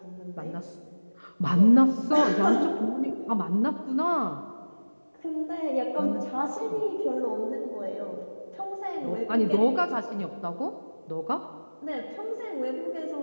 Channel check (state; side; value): inverted; both; correlation -1.00